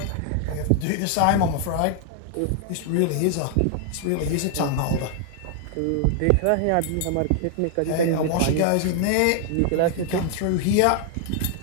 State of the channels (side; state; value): both; different; correlation 0.00